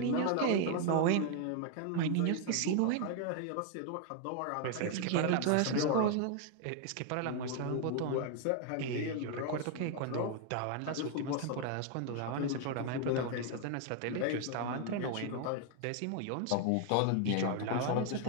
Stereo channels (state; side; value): different; both; correlation 0.00